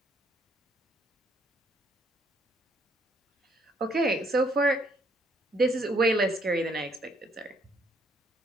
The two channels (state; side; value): normal; both; correlation 0.68